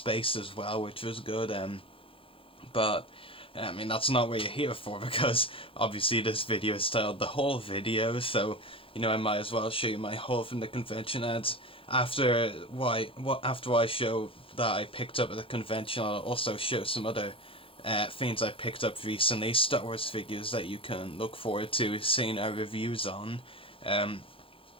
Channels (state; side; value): late; right; 0.26 ms